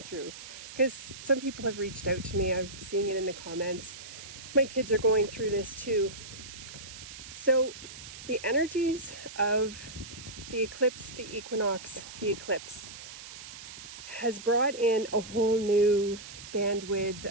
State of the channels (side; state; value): right; noise; hiss, 13 dB below the sound